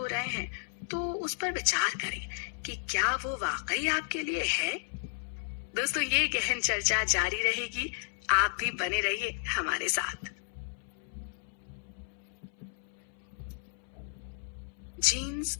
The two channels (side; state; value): right; silent; 56 dB below the other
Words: रहे हैं तो उस पर विचार करें कि क्या वो वाकई आपके लिए है। दोस्तों, ये गहन चर्चा जारी रहेगी, आप भी बने रहिए हमारे साथ। जीन्स